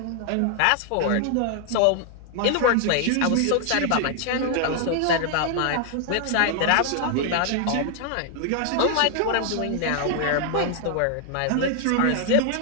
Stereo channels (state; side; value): different; both; correlation 0.00